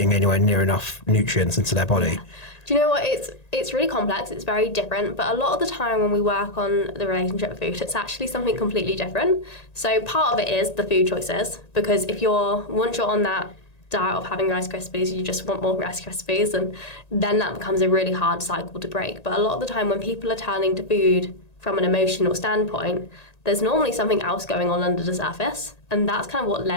anywhere near enough nutrients into their body? Yeah. Do you know what? It's really complex. It's very different. But a lot of the time when we work on the relationship with food, it's actually something completely different. So part of it is the food choices, because once you're on that diet of having Rice Krispies, you just want more Rice Krispies, and then that becomes a really hard cycle to break. But a lot of the time when people are turning to food from an emotional standpoint, there's normally something else going on under the surface. And that's kind of what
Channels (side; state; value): right; late; 1.8 ms